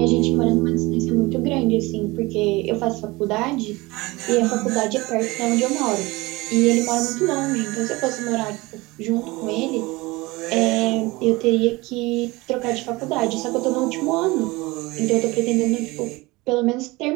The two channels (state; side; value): quieter; left; 22.2 dB